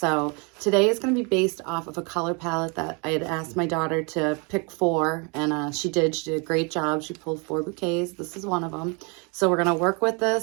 today is going to be based off of a color palette that I had asked my daughter to pick 4, and she did a great job. She pulled 4 bouquets. This is one of them. So we're going to work with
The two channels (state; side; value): quieter; left; 32.5 dB